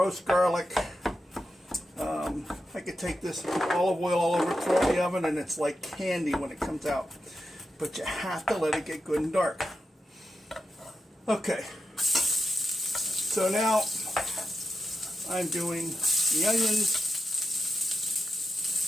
garlic. I could take this olive oil all over, throw it in the oven, and it's like candy when it comes out. But you have to let it get good and dark. Okay. So now I'm doing the onions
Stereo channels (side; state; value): both; normal; correlation 0.88